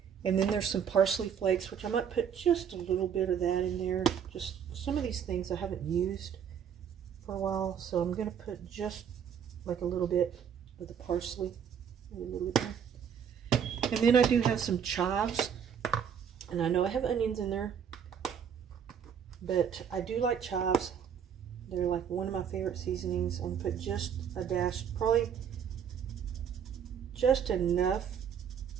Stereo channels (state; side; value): quieter; left; 7.9 dB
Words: And then there's some parsley flakes, which I might put just a little bit of that in there. Just some of these things I haven't used for a while, so I'm going to put just like a little bit of the parsley. A little bit there. And then I do have some chives, and I know I have onions in there, but I do like chives. They're like one of my favorite seasonings. I'm going to put just a dash, probably just enough